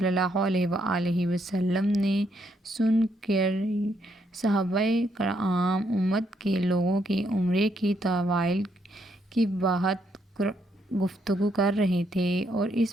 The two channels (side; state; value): both; normal; correlation 0.75